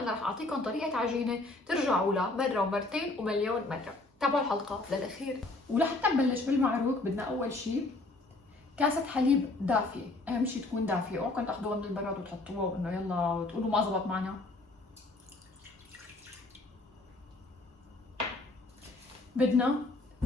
رح اعطيكم طريقة عجينة ترجعوا لها مرة ومرتين ومليون مرة. تابعوا الحلقة للاخير. ولحتى نبلش بالمعروك بدنا اول شيء كاسة حليب دافية، اهم شيء تكون دافية، اوعكم تاخذوها من البراد وتحطوها وانه يلا وتقولوا ما زبط معنا. بدنا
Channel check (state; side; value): quieter; right; 3.0 dB